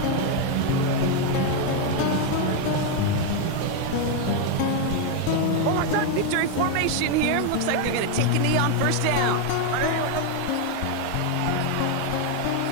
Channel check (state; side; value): different; both; correlation 0.01